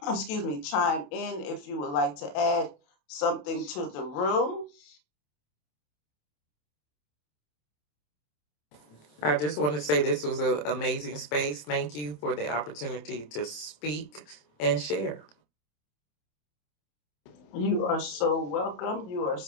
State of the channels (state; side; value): late; right; 27 ms